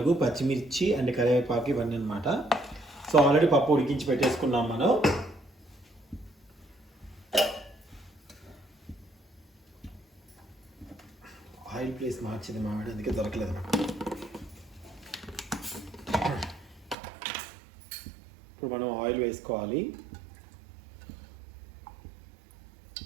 పచ్చిమిర్చి అండ్ కరివేపాకు ఇవన్నీ అనమాట. సో ఆల్రెడీ పప్పు ఉడికించి పెట్టేసుకున్నాం మనం. ఆయిల్ ప్లేస్ మార్చింది మామిడి, అందుకే దొరకలేదు. ఇప్పుడు మనం ఆయిల్ వేసుకోవాలి.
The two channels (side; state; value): left; drops out; at 16.9 s